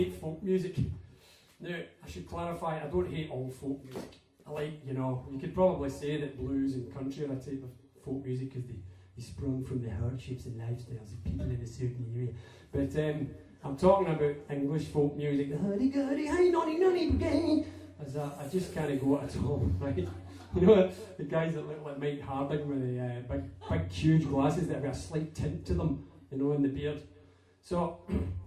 folk music. Now, I should clarify, I don't hate all folk music. I like, you could probably say that blues and country are a type of folk music because they sprung from the hardships and lifestyles of people in a certain area. But I'm talking about English folk music, the hurdy-gurdy, hey nonny nonny brigade. As I just can't go at all, right? You know, the guys that look like Mike Harding with the big huge glasses that have got a slight tint to them, in the beard. So,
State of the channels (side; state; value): both; identical; correlation 1.00